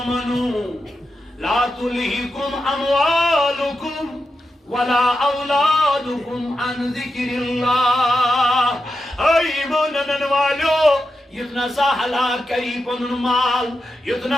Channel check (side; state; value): both; normal; correlation 0.88